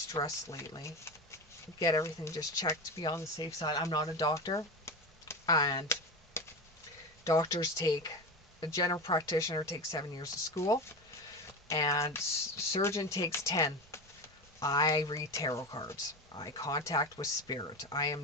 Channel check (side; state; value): both; normal; correlation 0.23